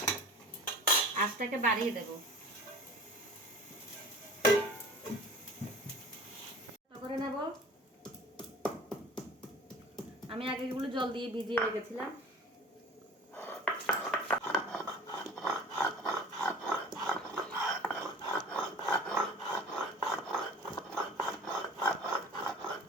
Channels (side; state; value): both; normal; correlation 0.42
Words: আঁচটাকে বাড়িয়ে দেব করে নেব। আমি আগে এগুলো জল দিয়ে ভিজিয়ে রেখেছিলাম।